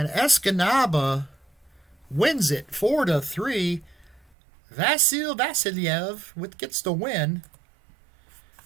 Escanaba wins it 4-3. Vasiliev gets the win.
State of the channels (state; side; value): drops out; left; at 4.2 s